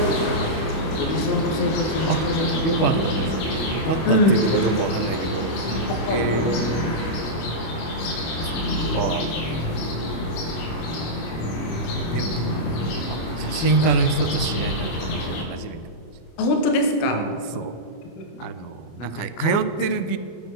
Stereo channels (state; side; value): late; right; 25 ms